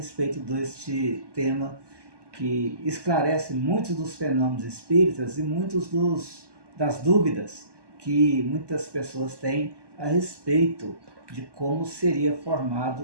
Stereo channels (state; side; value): late; left; 1.2 ms